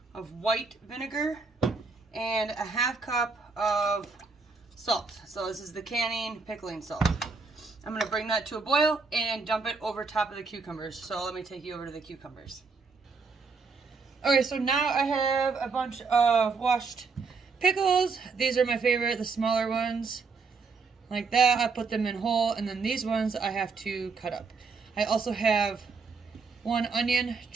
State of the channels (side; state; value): left; quieter; 4.6 dB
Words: of white vinegar and a half cup of salt. So this is the canning pickling salt. I'm gonna bring that to a boil and dump it over top of the cucumbers. So let me take you over to the cucumbers. Okay, so now I have a bunch of washed pickles. These are my favorite, the smaller ones. Like that, I put them in whole, and then these ones I have to cut up. I also have 1 onion